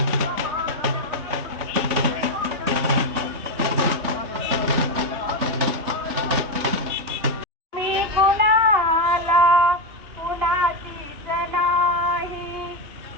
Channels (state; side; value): late; left; 3.6 ms